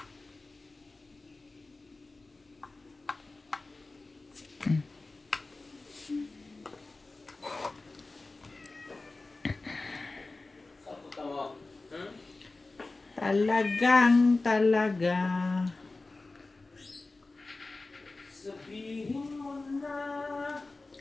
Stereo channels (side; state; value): right; quieter; 3.4 dB